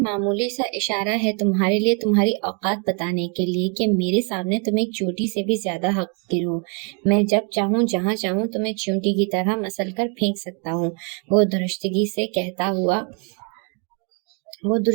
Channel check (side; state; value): left; quieter; 36.9 dB